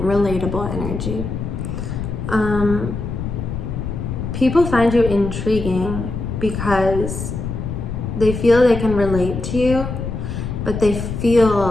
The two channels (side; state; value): left; noise; rumble, 5 dB below the sound